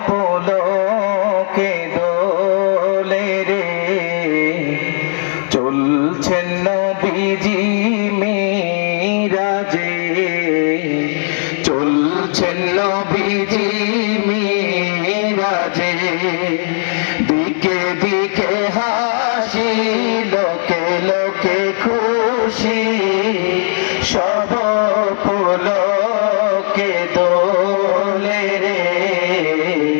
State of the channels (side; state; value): right; silent; digital silence